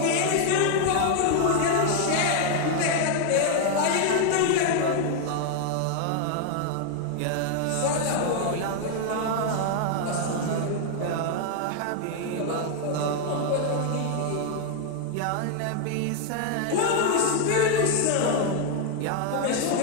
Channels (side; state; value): both; different; correlation 0.00